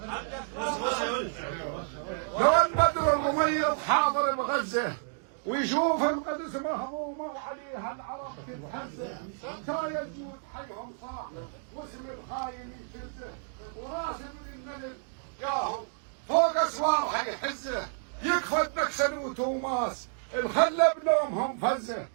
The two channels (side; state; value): left; silent; digital silence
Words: وين بدر وميم حاضر بغزة ويشوف القدس مهضومة وعليها العرب تتهزه شايل جود حيهم صاح واسم الخاين يشزه وراس ابن النبي ياهو فوق اسوارها يحزه يكفى نكسن وتوماس الخلة بنومهم فزه